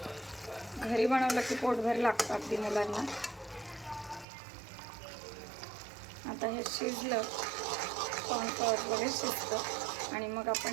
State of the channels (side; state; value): left; drops out; at 4.2 s